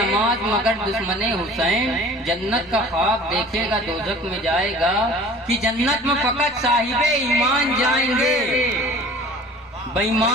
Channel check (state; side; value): normal; both; correlation 0.45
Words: मगर दुश्मने हुसैन, जन्नत का ख्वाब देखेगा दोजख में जाएगा। कि जन्नत में फकत साहिबे ईमान जाएंगे,